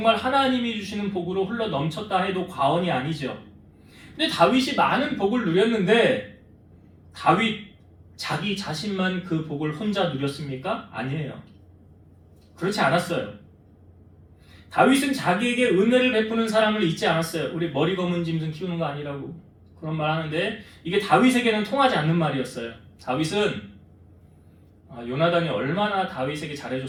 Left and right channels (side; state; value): both; identical; correlation 1.00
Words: 하나님이 주시는 복으로 흘러 넘쳤다 해도 과언이 아니죠. 근데 다윗이 많은 복을 누렸는데 다윗 자기 자신만 그 복을 혼자 누렸습니까? 아니에요. 그렇지 않았어요. 다윗은 자기에게 은혜를 베푸는 사람을 잊지 않았어요. 우리 머리 검은 짐승 키우는 거 아니라고 그런 말 하는데 이게 다윗에게는 통하지 않는 말이었어요. 다윗은 요나단이 얼마나 다윗에게